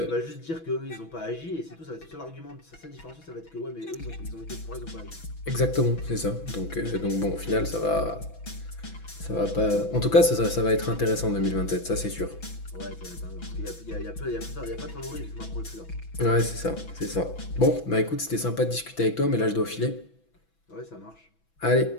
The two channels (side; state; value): right; late; 6.1 ms